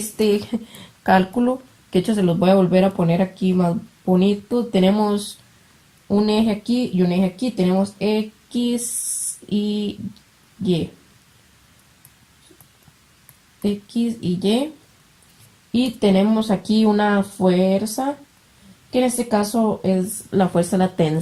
cálculo, que de hecho se los voy a volver a poner aquí más bonito. Tenemos un eje aquí y un eje aquí. Tenemos X y Y. X y Y. Y tenemos aquí una fuerza, que en este caso es la fuerza de la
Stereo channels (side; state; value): both; identical; correlation 1.00